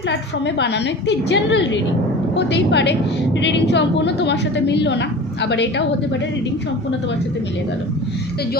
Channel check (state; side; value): normal; both; correlation 0.36